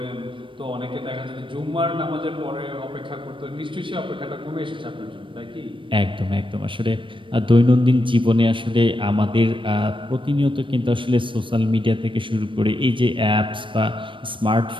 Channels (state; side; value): late; left; 0.25 ms